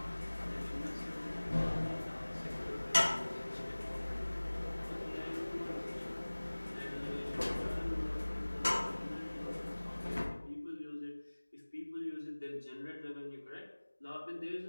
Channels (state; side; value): inverted; both; correlation -1.00